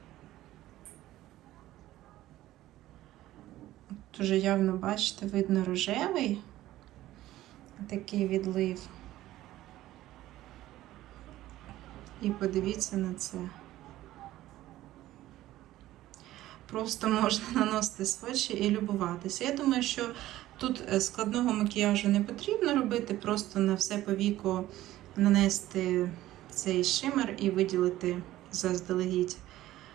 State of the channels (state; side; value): quieter; left; 15.0 dB